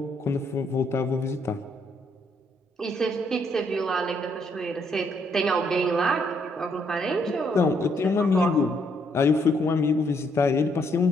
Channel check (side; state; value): both; normal; correlation 0.72